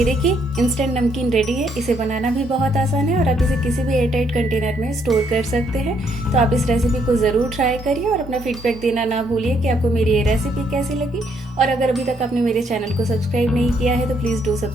देखिए इंस्टेंट नमकीन रेडी है। इसे बनाना भी बहुत आसान है और आप इसे किसी भी एयरटाइट कंटेनर में स्टोर कर सकते हैं। तो आप इस रेसिपी को ज़रूर ट्राई करिए और अपना फीडबैक देना ना भूलिए कि आपको मेरी ये रेसिपी कैसी लगी। और अगर अभी तक आपने मेरे चैनल को सब्सक्राइब नहीं किया है तो please do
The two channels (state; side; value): normal; both; correlation 0.71